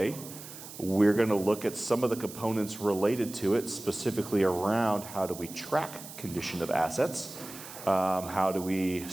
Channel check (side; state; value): right; noise; hiss, 14 dB below the sound